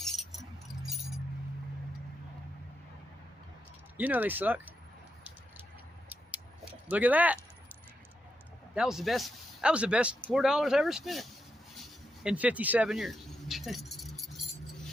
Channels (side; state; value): both; normal; correlation 0.84